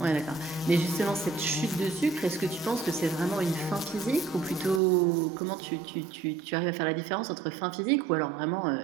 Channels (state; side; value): drops out; left; at 4.8 s